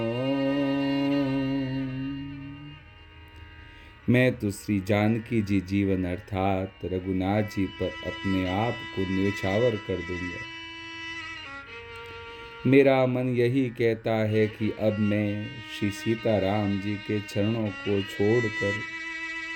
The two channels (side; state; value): both; identical; correlation 1.00